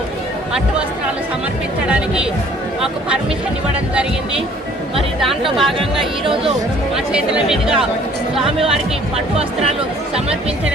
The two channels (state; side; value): normal; both; correlation 0.56